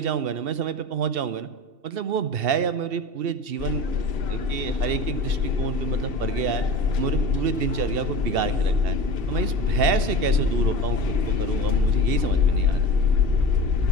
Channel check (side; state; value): left; late; 2.7 ms